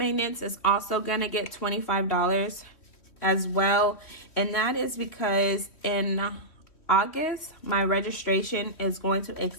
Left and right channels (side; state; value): right; late; 3.2 ms